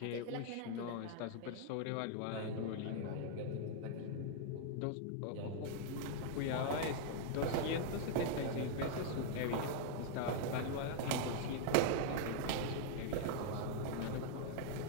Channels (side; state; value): both; different; correlation 0.00